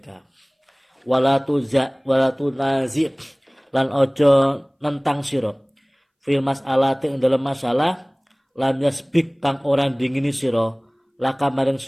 Walatu nazi lan ojo nentang sira fil mas'alati dalam masalah lam yasbik kang orang dingini sira laka maring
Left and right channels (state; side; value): identical; both; correlation 1.00